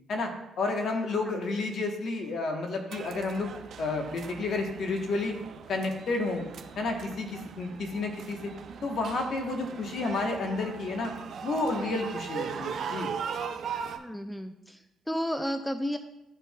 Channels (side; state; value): both; normal; correlation 0.70